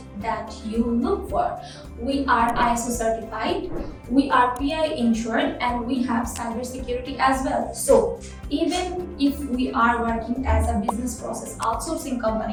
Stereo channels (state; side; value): identical; both; correlation 1.00